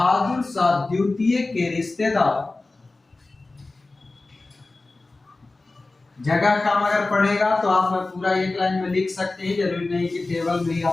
शाह द्वितीय के रिश्तेदार, जगह काम अगर पड़ेगा तो आप पूरा एक लाइन में लिख सकते हैं, जरूरी नहीं कि टेबल में ही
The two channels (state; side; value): quieter; right; 3.3 dB